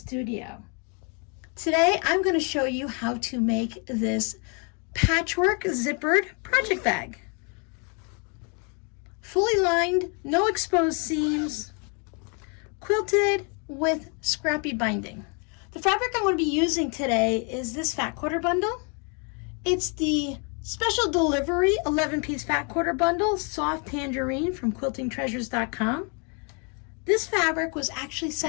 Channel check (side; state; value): right; quieter; 36.8 dB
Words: Today I'm going to show you how to make this patchwork zippered project bag. Fully lined, no exposed seams, quilted with scrappy binding. The fabric I'm going to be using today is this fat quarter bundle. It's the special delivery 11-piece fat quarter bundle, soft tangerine from quiltingtreasures.com. This fabric was actually